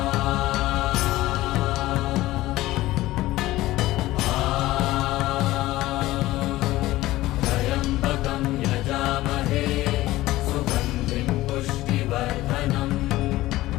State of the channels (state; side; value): quieter; right; 17.0 dB